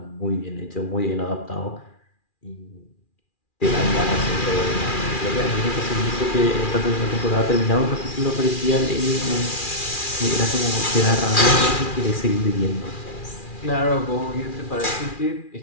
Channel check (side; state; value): right; late; 2.4 ms